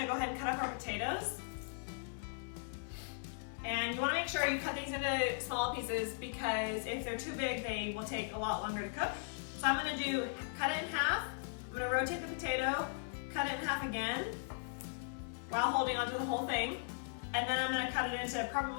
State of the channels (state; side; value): silent; right; 52 dB below the other